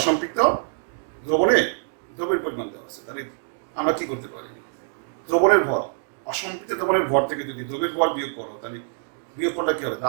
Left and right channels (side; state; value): left; silent; 62 dB below the other